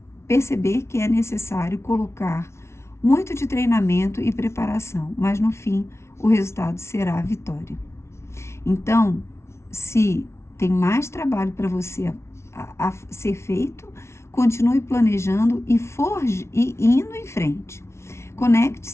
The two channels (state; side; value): late; right; 0.13 ms